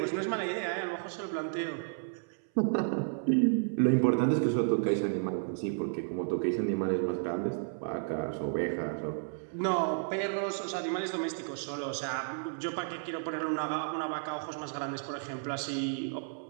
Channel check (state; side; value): silent; left; 56 dB below the other